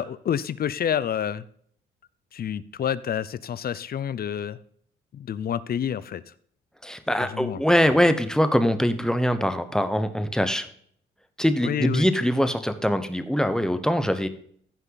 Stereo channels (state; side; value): normal; both; correlation 0.82